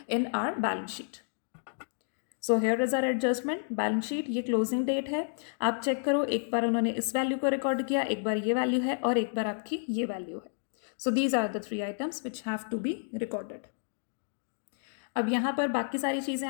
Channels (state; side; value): silent; right; digital silence